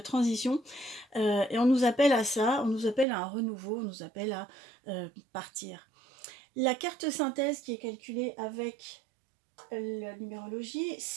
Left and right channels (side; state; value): left; drops out; at 3.1 s